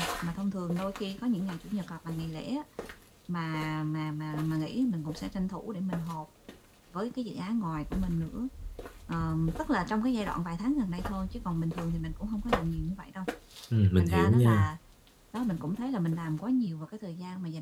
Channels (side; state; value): both; identical; correlation 1.00